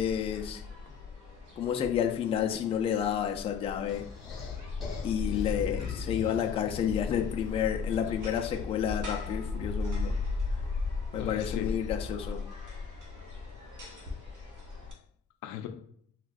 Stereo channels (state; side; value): quieter; right; 7.1 dB